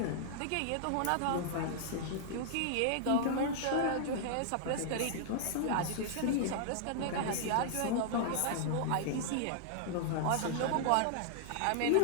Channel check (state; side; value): different; both; correlation -0.01